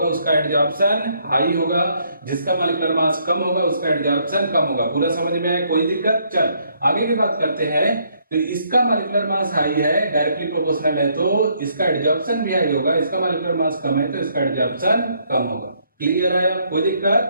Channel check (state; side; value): inverted; both; correlation -0.70